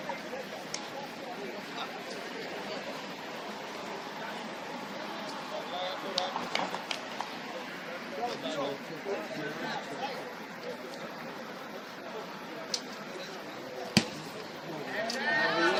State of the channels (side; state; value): both; identical; correlation 1.00